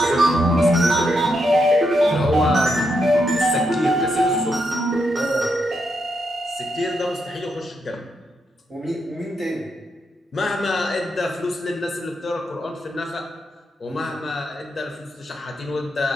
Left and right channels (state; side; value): normal; both; correlation 0.81